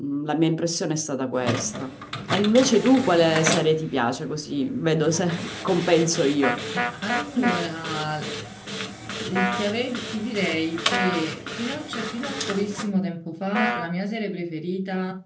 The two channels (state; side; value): identical; both; correlation 1.00